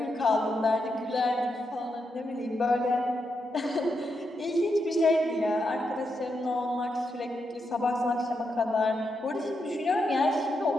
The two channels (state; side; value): normal; both; correlation 0.84